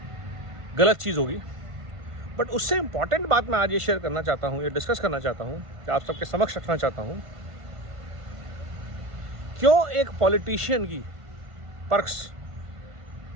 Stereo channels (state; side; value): late; left; 1.5 ms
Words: गलत चीज़ होगी। बट उससे इम्पॉर्टेंट बात मैं आज ये शेयर करना चाहता हूँ, ये डिस्कस करना चाहता हूँ, कि आप सबके समक्ष रखना चाहता हूँ, क्यों एक पॉलिटिशियन की पर्क्स